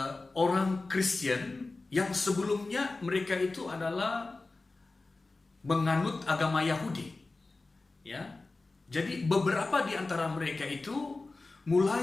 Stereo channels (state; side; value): quieter; right; 3.4 dB